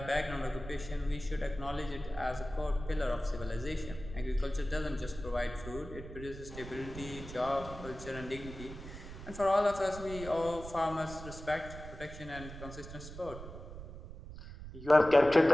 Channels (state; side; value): noise; right; rumble, 12 dB below the sound